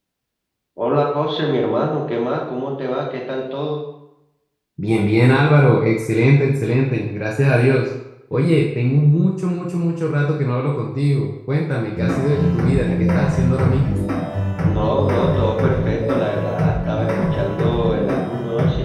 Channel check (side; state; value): both; identical; correlation 1.00